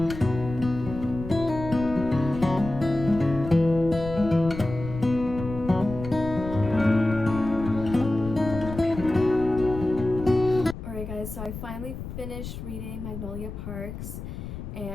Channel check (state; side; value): noise; left; rumble, 9 dB below the sound